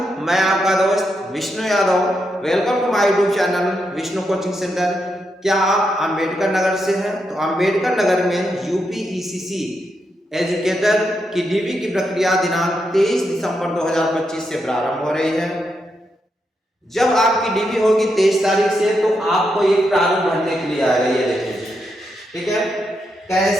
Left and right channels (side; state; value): both; normal; correlation 0.83